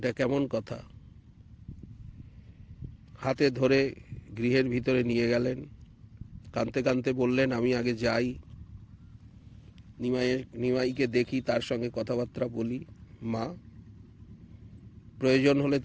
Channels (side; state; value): both; identical; correlation 1.00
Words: কেমন কথা? হাতে ধরে গৃহের ভিতরে নিয়ে গেলেন। কাঁদতে কাঁদতে বললেন, আমি আগে যাই, নিমাইকে দেখি, তার সঙ্গে কথাবার্তা বলি। মা, প্রয়োজন হলে